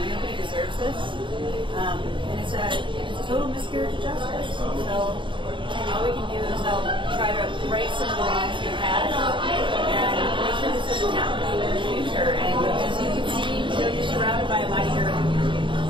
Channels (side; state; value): left; late; 0.24 ms